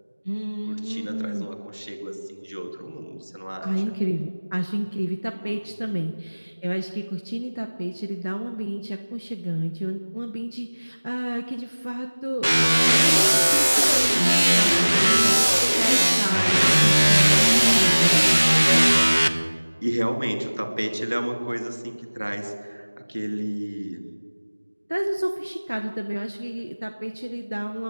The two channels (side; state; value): both; inverted; correlation -1.00